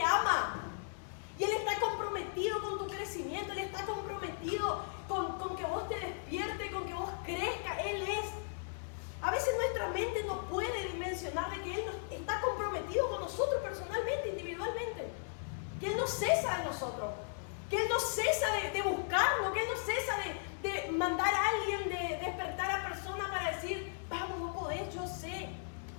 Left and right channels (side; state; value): right; silent; 53 dB below the other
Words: ama y Él está comprometido con tu crecimiento, Él está comprometido con que vos te despiertes, con que vos crezcas. Él es. A veces nuestra mente no puede dimensionar de que Él está comprometido con nosotros personalmente, individualmente, que Él no cesa de nosotros, que Él no cesa de buscarnos, que Él no cesa de mandar a alguien, de despertar a personas para decir, vamos, no podés, yo sé.